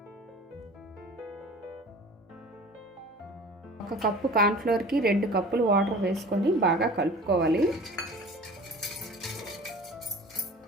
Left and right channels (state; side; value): normal; both; correlation 0.42